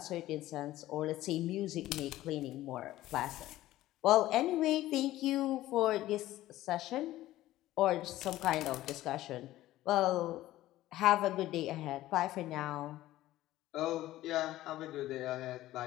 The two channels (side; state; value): right; quieter; 15.3 dB